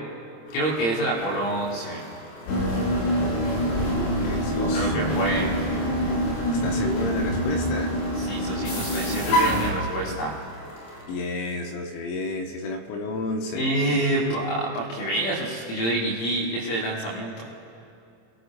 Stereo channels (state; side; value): late; right; 26 ms